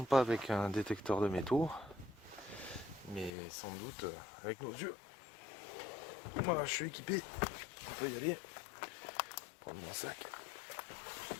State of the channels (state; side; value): drops out; right; at 3.3 s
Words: pas avec un détecteur de métaux, mais sans doute avec nos yeux. Voilà, je suis équipé. On peut y aller. Prendre mon sac.